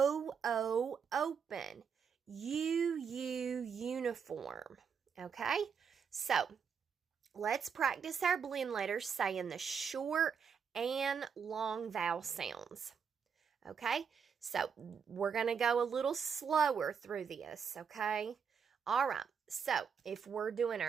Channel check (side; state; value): left; quieter; 6.6 dB